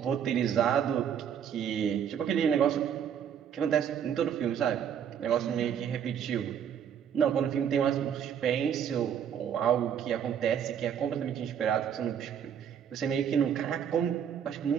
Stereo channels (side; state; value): left; quieter; 8.5 dB